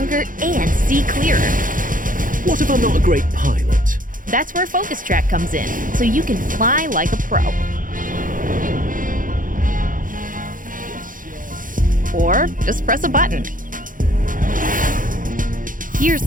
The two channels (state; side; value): late; left; 0.39 ms